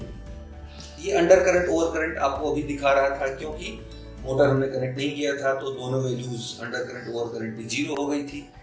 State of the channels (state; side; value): identical; both; correlation 1.00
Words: ये अंडर करंट ओवर करंट आपको अभी दिखा रहा था, क्योंकि मोटर हमने कनेक्ट नहीं किया था तो दोनों values under current over current की 0 हो गई थी,